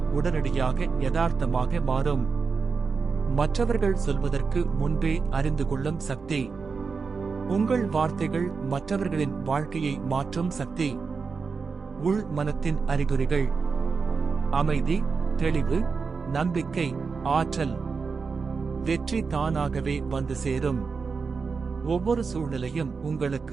உடனடியாக யதார்த்தமாக மாறும். மற்றவர்கள் சொல்வதற்கு முன்பே அறிந்து கொள்ளும் சக்தி. உங்கள் வார்த்தைகள் மற்றவர்களின் வாழ்க்கையை மாற்றும் சக்தி. உள் மனத்தின் அறிகுறிகள். அமைதி, தெளிவு, நம்பிக்கை, ஆற்றல். வெற்றி தானாகவே வந்து சேரும். ஒவ்வொரு சூழ்நிலையும்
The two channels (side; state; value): left; quieter; 5.0 dB